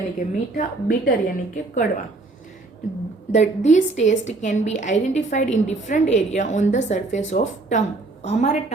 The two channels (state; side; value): quieter; left; 3.3 dB